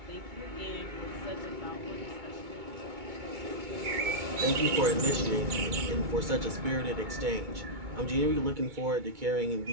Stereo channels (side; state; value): left; late; 2.2 ms